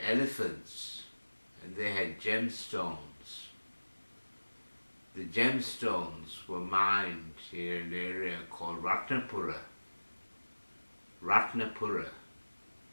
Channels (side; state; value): both; inverted; correlation -1.00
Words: elephants, and they had gemstones. The gemstones were mined in an area called Ratnapura. Ratnapura.